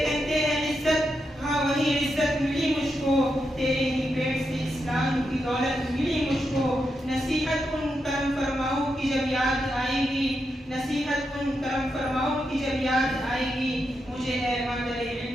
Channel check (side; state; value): both; normal; correlation 0.85